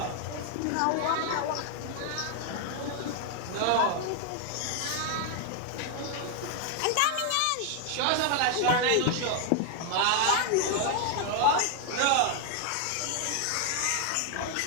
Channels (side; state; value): both; different; correlation 0.00